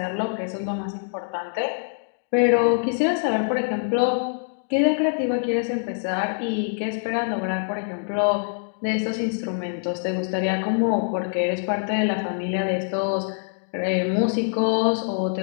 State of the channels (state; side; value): silent; right; digital silence